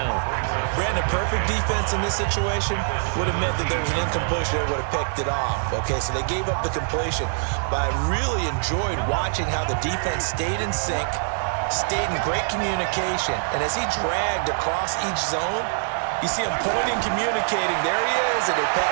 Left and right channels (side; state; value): left; silent; 63 dB below the other